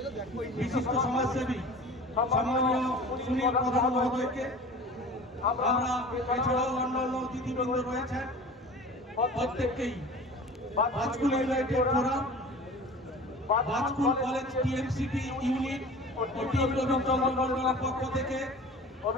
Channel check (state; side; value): normal; both; correlation 0.40